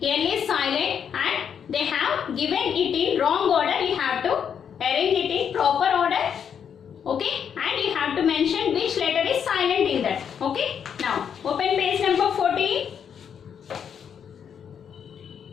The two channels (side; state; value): right; quieter; 7.8 dB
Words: L is silent and they have given it in wrong order. You have to arrange it in proper order. Okay. And you have to mention which letter is silent in that. Okay. Now, open page number 14.